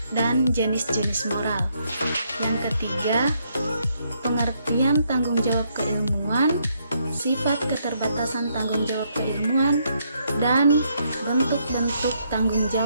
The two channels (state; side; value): inverted; both; correlation -0.74